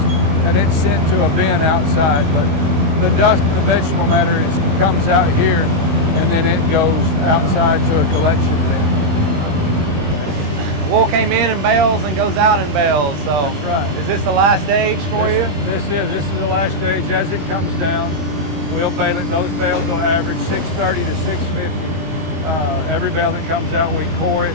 and it's sent to a bin outside. But the dust and the vegetable matter comes out here and then it goes outside to a collection bin. Wool came in bales and goes out in bales. So that's right. Is this the last stage for you? This is the last stage. As it comes down, we'll bale it. Those bales will average 630 to 650. Every bale that comes out, we core it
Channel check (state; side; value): late; left; 20 ms